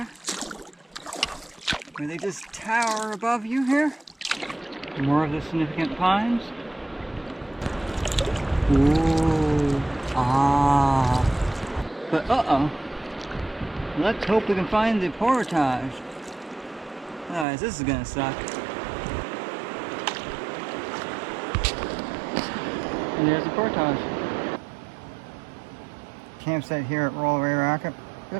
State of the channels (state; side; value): drops out; left; at 17.4 s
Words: where they just tower above you here. More of the significant pines. Ooh, ah. But uh-oh. Let's hope we can find the portage. Otherwise, this is gonna suck. And there's the portage. Campsite here at Rollaway Racket.